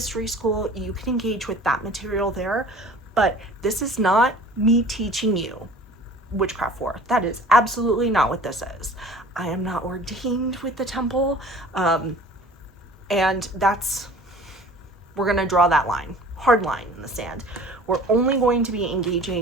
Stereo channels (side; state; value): both; normal; correlation 0.45